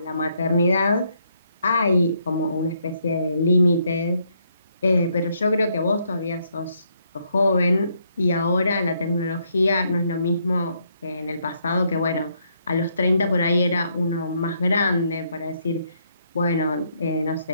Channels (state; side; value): inverted; both; correlation -0.74